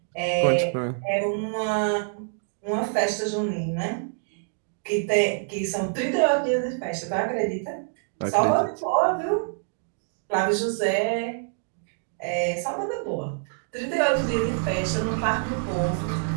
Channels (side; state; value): left; silent; digital silence